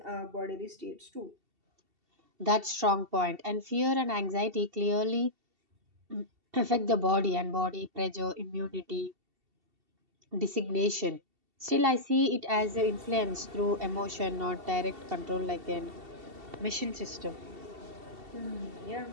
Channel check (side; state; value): left; late; 2.7 ms